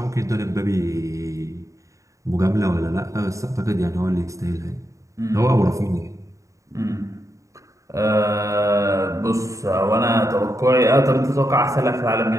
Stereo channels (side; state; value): left; late; 0.16 ms